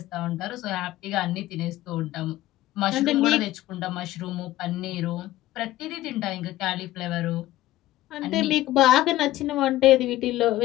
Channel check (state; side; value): quieter; right; 15.6 dB